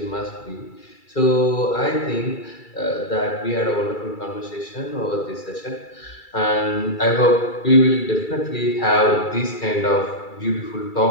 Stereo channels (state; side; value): late; right; 2.3 ms